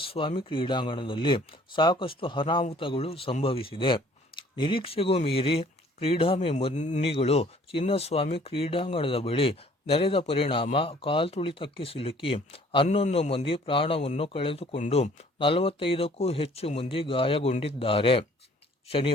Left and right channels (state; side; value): normal; both; correlation 0.56